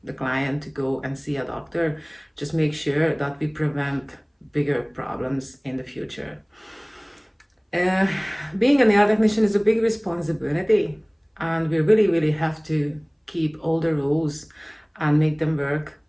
the client to go and see a doctor. Just make sure that we prevent bigger problems in the future. Being a nail technician is a big responsibility, and we really have to keep all the rules and make them work,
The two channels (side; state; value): both; identical; correlation 1.00